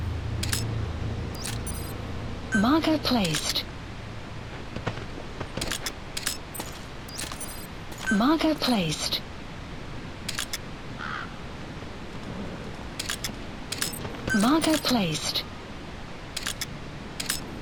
Marker placed. Marker placed. Marker placed.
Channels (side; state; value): both; identical; correlation 1.00